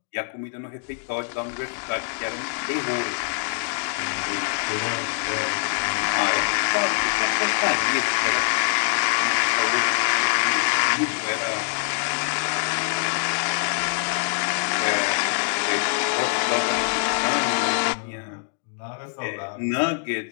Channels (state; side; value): silent; right; digital silence